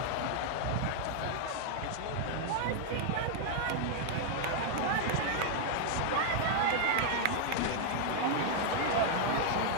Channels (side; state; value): both; different; correlation 0.00